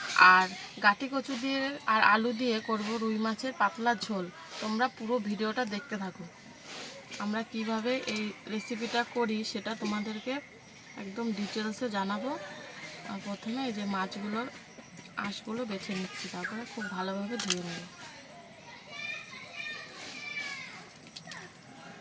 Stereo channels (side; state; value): both; identical; correlation 1.00